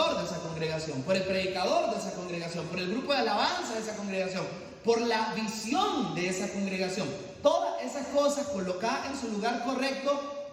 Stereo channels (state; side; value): identical; both; correlation 1.00